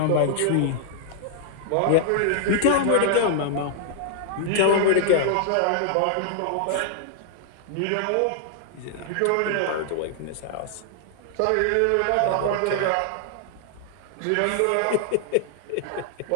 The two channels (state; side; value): different; both; correlation -0.01